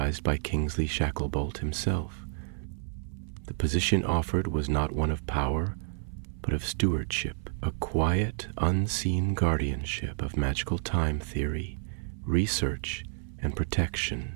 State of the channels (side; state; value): left; silent; 58 dB below the other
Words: by Kingsley Shacklebolt himself. The position offered was not one of power, but of stewardship, a quiet, unseen guardianship of magical time theory, research, and